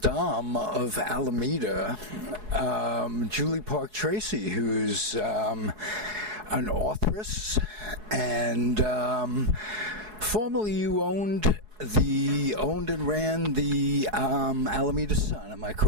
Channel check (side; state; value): left; late; 4.7 ms